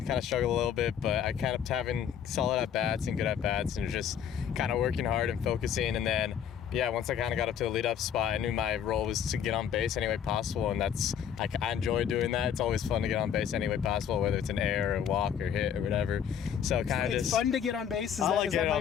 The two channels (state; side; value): quieter; right; 8.5 dB